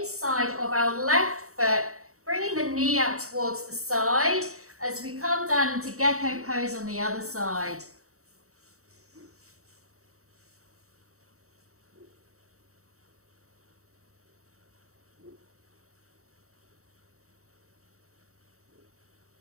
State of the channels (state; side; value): late; left; 0.64 ms